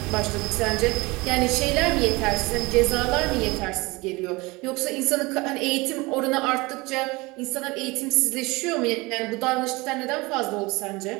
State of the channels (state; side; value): quieter; left; 23.6 dB